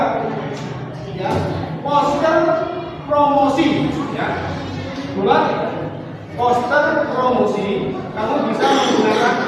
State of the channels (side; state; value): both; identical; correlation 1.00